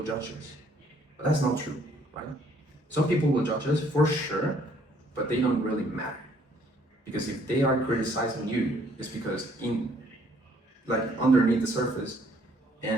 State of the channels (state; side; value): normal; both; correlation 0.63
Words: judge us. But that's not true, right? Some people will judge us for sure, but they don't really matter. Because if they are criticizing you, it's because underneath the surface